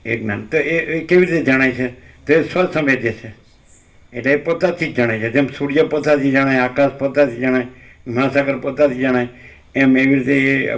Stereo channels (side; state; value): both; identical; correlation 1.00